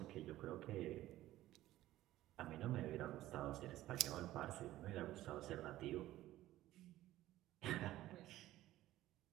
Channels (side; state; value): left; quieter; 15.1 dB